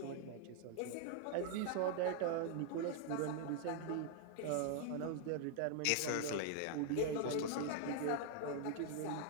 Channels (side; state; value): both; different; correlation 0.00